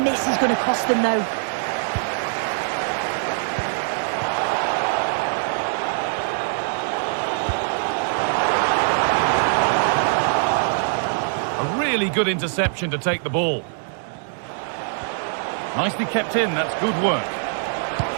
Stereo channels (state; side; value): silent; left; digital silence